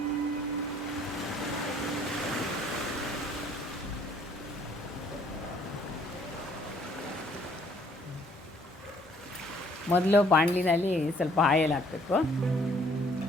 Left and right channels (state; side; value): normal; both; correlation 0.62